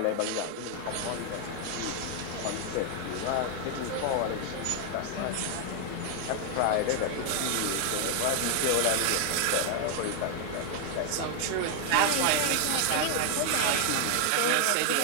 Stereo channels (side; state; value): both; different; correlation 0.00